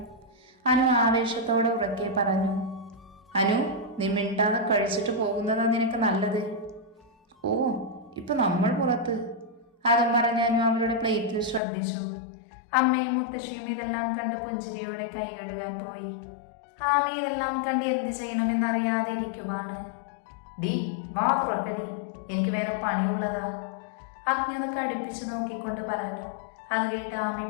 അനു ആവേശത്തോടെ ഉറക്കെ പറഞ്ഞു. അനു, നീ മിണ്ടാതെ കഴിച്ചിട്ട് പോകുന്നതാ നിനക്ക് നല്ലത്. ഓ, ഇപ്പൊ നമ്മൾ പുറത്ത്. അതും പറഞ്ഞ് അനു അവളുടെ പ്ലേറ്റിൽ ശ്രദ്ധിച്ചു. അമ്മയും മുത്തശ്ശിയും ഇതെല്ലാം കണ്ട് പുഞ്ചിരിയോടെ കൈ കഴുകാൻ പോയി. ആമ ഇതെല്ലാം കണ്ട് എന്ത് ചെയ്യണമെന്നറിയാതെ ഇരിക്കുവാണ്. ഡി, വാ തുറക്കടി, എനിക്ക് വേറെ പണിയുള്ളതാ. അഗ്നി ഒന്ന് കടുപ്പിച്ച് നോക്കിക്കൊണ്ട് പറഞ്ഞു. അത് കേട്ട് ആമി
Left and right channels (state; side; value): drops out; right; at 11.6 s